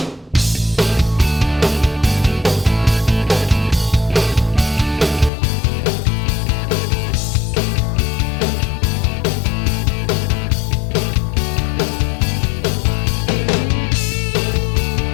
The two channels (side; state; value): right; drops out; at 5.3 s